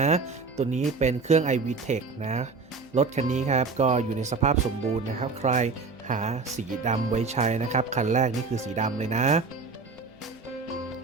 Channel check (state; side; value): quieter; left; 4.4 dB